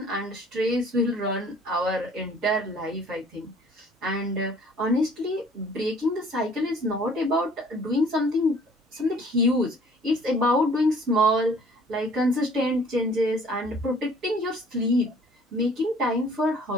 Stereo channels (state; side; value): normal; both; correlation 0.54